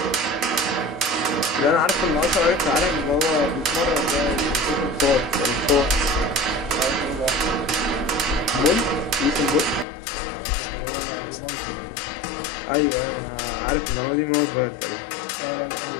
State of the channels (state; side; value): drops out; right; at 9.9 s